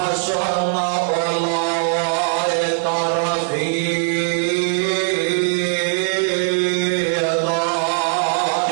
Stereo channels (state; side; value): silent; left; digital silence